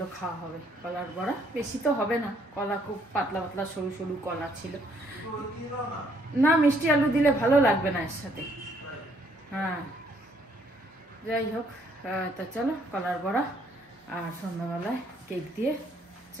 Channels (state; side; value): normal; both; correlation 0.67